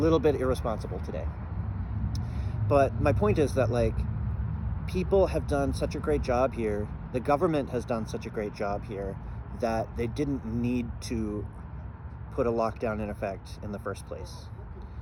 bit irresponsible today. But my point is that like people have done such a great job here. The government has done such a great job here that they didn't need to put a lockdown in effect in the first place.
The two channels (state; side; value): identical; both; correlation 1.00